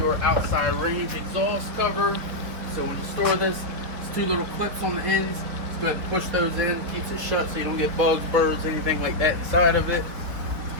outside range exhaust cover. So when you store this, it's two little clips on the ends. Just go ahead and push those in, keeps it shut so you don't get bugs, birds, anything like that inside of it.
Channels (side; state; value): left; late; 4.4 ms